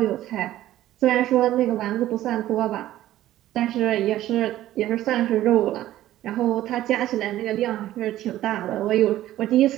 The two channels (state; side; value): quieter; left; 14.0 dB